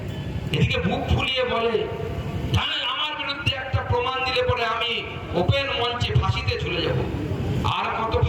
এদিকে বুক ফুলিয়ে বলে জানেন আমার বিরুদ্ধে একটা প্রমাণ দিলে পরে আমি ওপেন মঞ্চে ফাঁসিতে চলে যাব। আর কত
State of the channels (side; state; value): both; identical; correlation 1.00